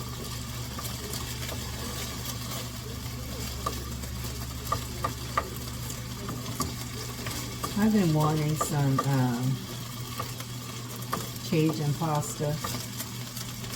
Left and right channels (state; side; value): identical; both; correlation 1.00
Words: I've been wanting some Cajun pasta,